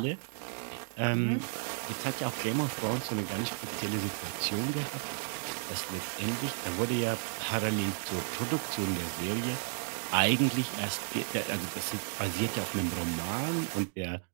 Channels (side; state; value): left; silent; digital silence